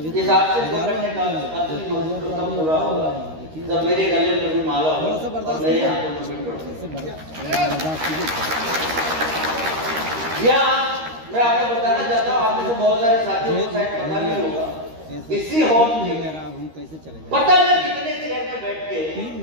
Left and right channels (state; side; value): late; left; 13 ms